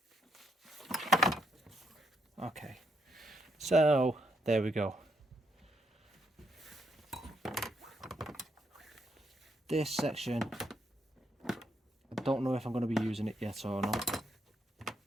Okay, so there we go. This section, I don't know if I'm going to be using it yet or not.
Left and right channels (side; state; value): both; normal; correlation 0.76